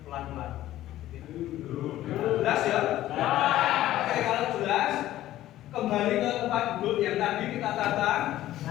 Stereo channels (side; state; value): right; quieter; 14.2 dB